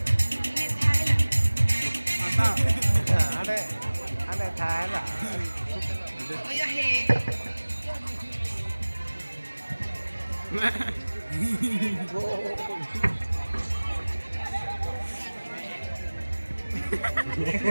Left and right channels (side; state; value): both; inverted; correlation -1.00